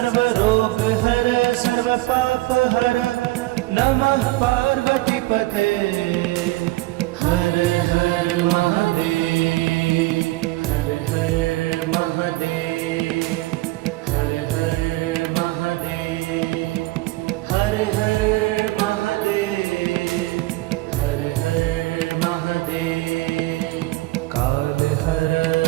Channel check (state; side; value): quieter; left; 19.8 dB